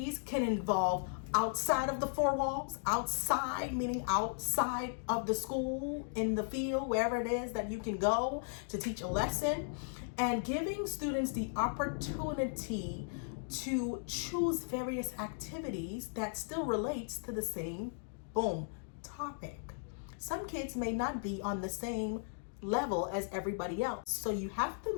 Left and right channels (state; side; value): silent; right; digital silence